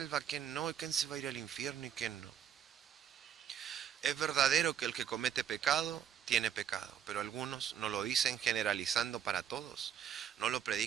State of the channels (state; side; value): quieter; left; 9.3 dB